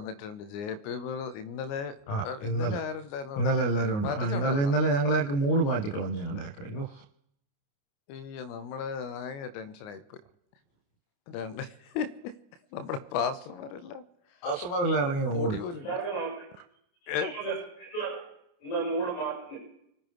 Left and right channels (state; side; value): late; right; 29 ms